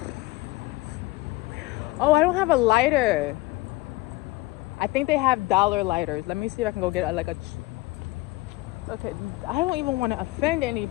Oh, I don't have a lighter. I think they have dollar lighters. Let me see if I can go get okay, I don't even want to offend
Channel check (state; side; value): quieter; right; 20.3 dB